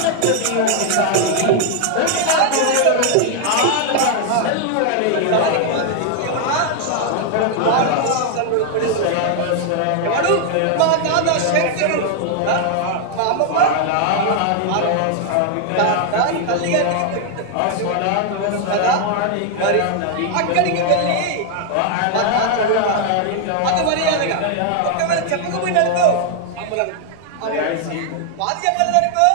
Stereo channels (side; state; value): both; different; correlation 0.00